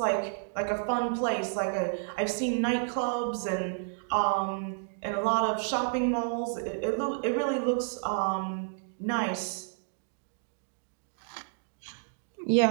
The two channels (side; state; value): left; silent; digital silence